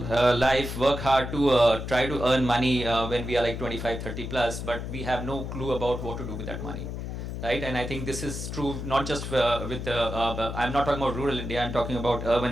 life, work hard to try to earn money when we are like 25, 30 plus, but we have no clue about what to do with that money. Right? And I think this is true not just I'm not talking about rural India, I'm talking about urban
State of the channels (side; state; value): left; noise; hum, 6 dB below the sound